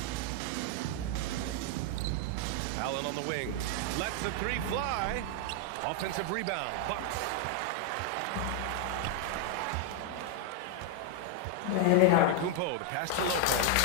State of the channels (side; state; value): both; different; correlation 0.00